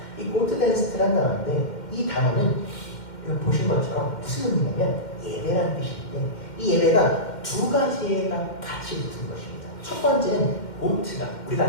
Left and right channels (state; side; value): late; right; 2.1 ms